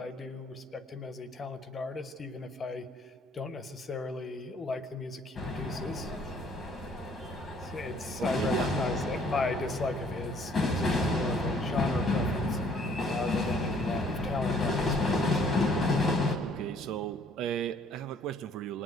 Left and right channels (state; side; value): normal; both; correlation 0.60